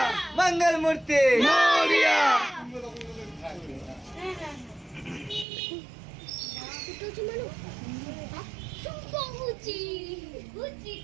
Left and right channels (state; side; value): drops out; left; at 5.5 s